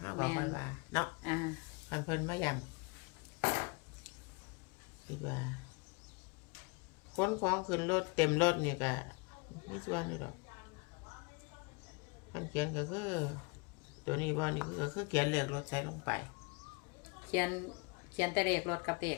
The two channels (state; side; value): quieter; right; 30.1 dB